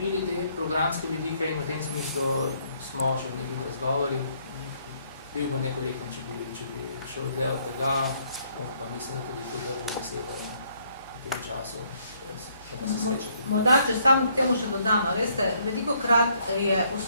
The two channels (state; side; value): inverted; both; correlation -0.68